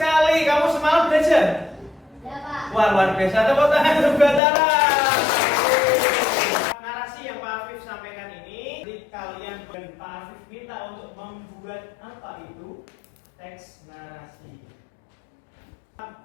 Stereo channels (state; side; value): drops out; right; at 4.4 s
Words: Kamu semalam belajar? Ya, Pak. Wah, luar biasa. Tepuk tangan untuk Batara. Narasi yang Pak Afif sampaikan ini, jadi kalian dan Pak Afif minta untuk membuat apa itu teks narasi.